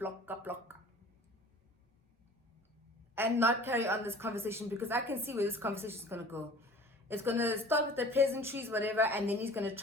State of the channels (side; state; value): both; normal; correlation 0.45